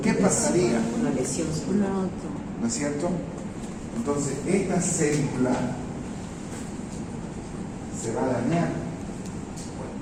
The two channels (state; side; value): identical; both; correlation 1.00